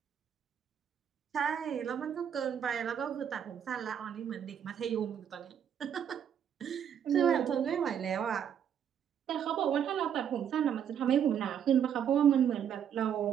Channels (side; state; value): left; quieter; 8.7 dB